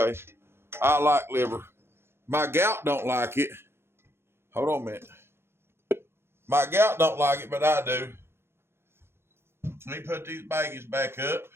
I like liver. My gout don't like it. Hold on a minute. My gout don't like it, but I do. Let me put these baggies back up.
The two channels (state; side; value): late; left; 0.12 ms